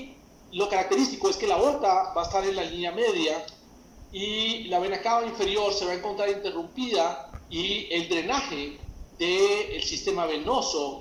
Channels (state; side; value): identical; both; correlation 1.00